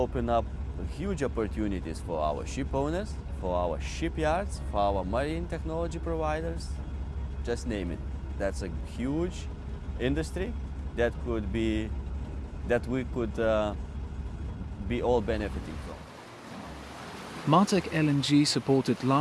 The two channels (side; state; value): both; identical; correlation 1.00